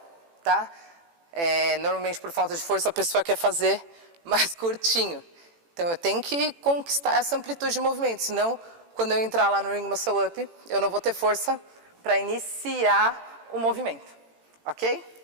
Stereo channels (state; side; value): late; left; 18 ms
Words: tá? Normalmente, por falta de força, a pessoa quer fazer mais curtinho. Então, eu tenho que conquistar essa amplitude de movimento, senão, quando eu entrar lá no Ring Muscle Up, eu não vou ter força para iniciar o movimento, ok?